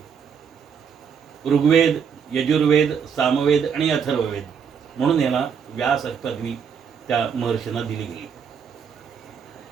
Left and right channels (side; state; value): left; quieter; 7.0 dB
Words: ऋग्वेद, यजुर्वेद, सामवेद आणि अथर्ववेद, म्हणून याला व्यास पदवी त्या महर्षींना दिली गेली.